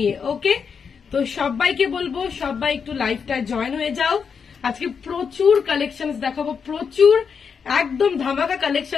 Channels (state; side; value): quieter; right; 6.3 dB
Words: ওকে, তো সবাইকে বলবো সবাই একটু লাইভটায় জয়েন হয়ে যাও। আজকে প্রচুর কালেকশনস দেখাবো, প্রচুর একদম ধামাকা